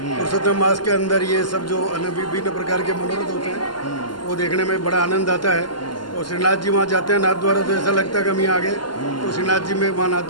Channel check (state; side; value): late; right; 0.71 ms